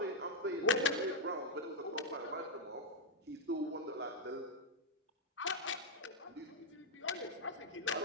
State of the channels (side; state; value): both; normal; correlation -0.02